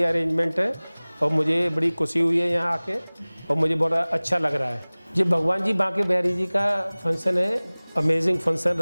अरेंजमेंट है और मुझे बड़ी खुशी हुई है यहाँ आके और मुझे बड़ा अच्छा लग रहा है। ये भगवान जी बांके बिहारी जी का फंक्शन है, अमेजिंग फंक्शन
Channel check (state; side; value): inverted; both; correlation -1.00